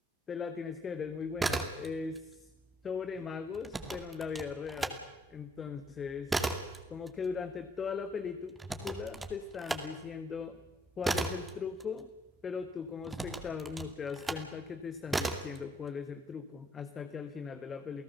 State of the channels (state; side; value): normal; both; correlation 0.71